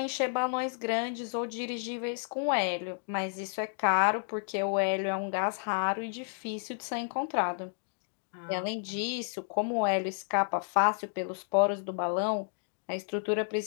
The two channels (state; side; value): silent; right; digital silence